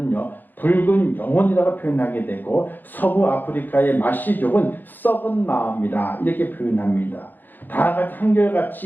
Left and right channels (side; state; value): right; late; 0.089 ms